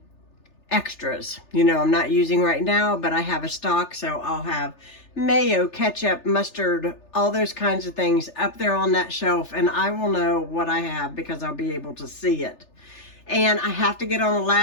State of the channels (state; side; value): late; right; 3.4 ms